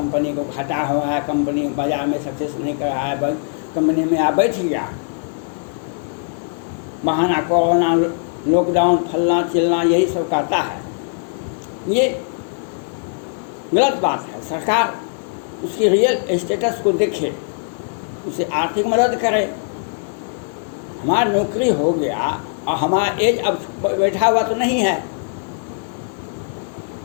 को खटा हो रहा है, कंपनी बाजार में सक्सेस नहीं कर रहा है, कंपनी में आप बैठ गया, बहाना कोरोना लॉकडाउन फलना चिलना यही सब कहता है। ये गलत बात है। सरकार उसकी रियल स्टेटस को देखे, उसे आर्थिक मदद करे। हमारा नौकरी हो गया और हमारा एज अब बैठा हुआ तो नहीं है,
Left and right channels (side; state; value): right; silent; 57 dB below the other